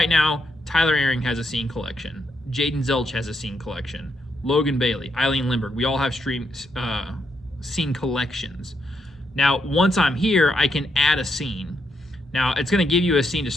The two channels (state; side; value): normal; both; correlation 0.79